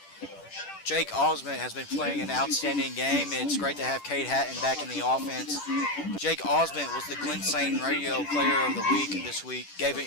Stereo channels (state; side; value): late; right; 10 ms